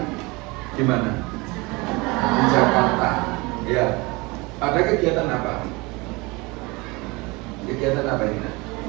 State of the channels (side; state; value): left; quieter; 24.9 dB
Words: di mana? Di Jakarta. Ya. Ada kegiatan apa? Kegiatan apa ini?